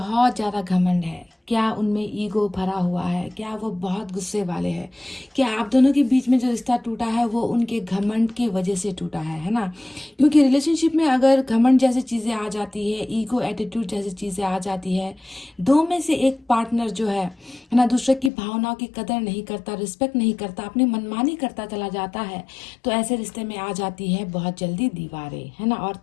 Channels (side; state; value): right; drops out; at 18.3 s